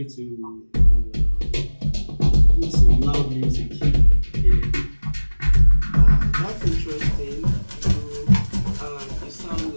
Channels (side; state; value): both; inverted; correlation -1.00